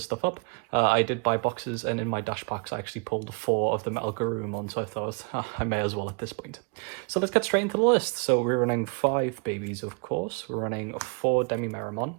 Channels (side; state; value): left; quieter; 35.1 dB